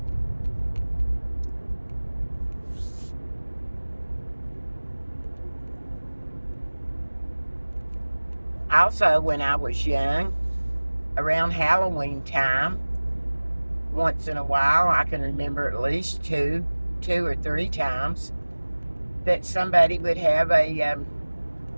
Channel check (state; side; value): inverted; both; correlation -1.00